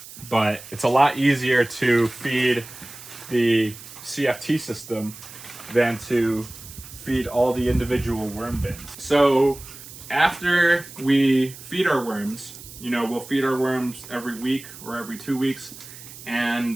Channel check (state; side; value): noise; right; hiss, 16 dB below the sound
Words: But it's a lot easier to feed the Cft system than to feed all the individual worm bins. So after we feed our worms, you know, we'll feed our worms every week or every 2 weeks,